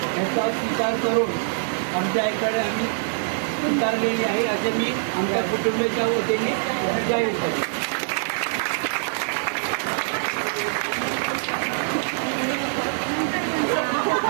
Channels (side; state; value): left; silent; digital silence